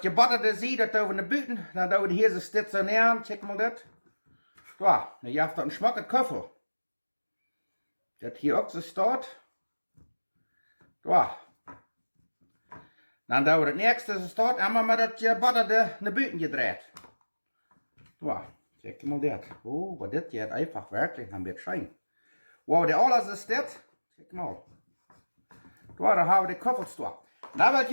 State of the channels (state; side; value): inverted; both; correlation -1.00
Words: gebutterte Seed, das tun wir in die Büten. Dann tun wir hier so stationieren. Check mal das. So, dann habt ihr einen schmacken Köffel. Das hier auch so steht. So. Dann tun wir das nächste, das steht, einmal mit das gebutterte in die Büten gedreht. So, check mal das. Oh, was das jetzt einfach wirklich ein bisschen schein. Wow, der alles ist das. Check mal. Da haben wir die Köffelstor. Da will